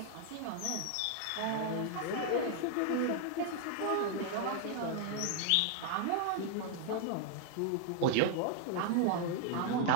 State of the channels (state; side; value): different; both; correlation 0.00